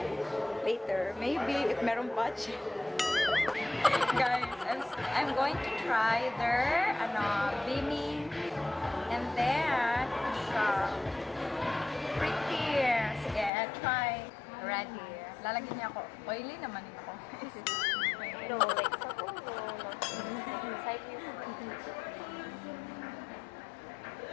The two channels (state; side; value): drops out; right; at 13.5 s